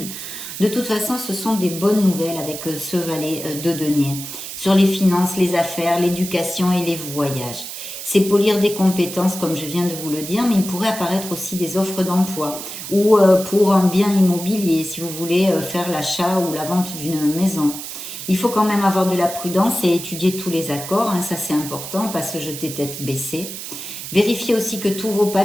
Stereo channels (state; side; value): noise; right; hiss, 9 dB below the sound